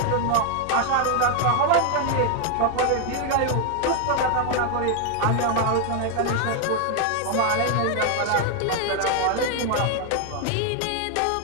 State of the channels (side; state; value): both; different; correlation 0.01